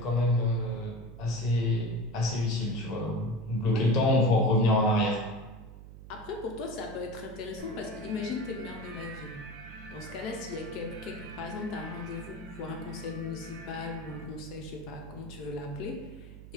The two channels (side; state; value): right; noise; hum, 15 dB below the sound